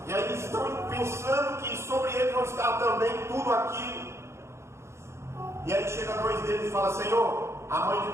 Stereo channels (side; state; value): left; late; 0.13 ms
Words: e aí eles estão pensando que sobre ele não está também tudo aquilo. E aí chega 2 deles e fala: Senhor, a mãe de